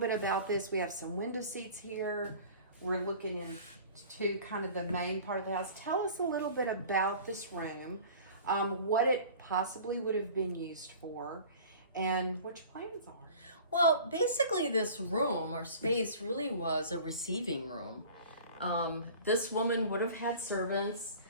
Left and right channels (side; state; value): both; inverted; correlation -0.43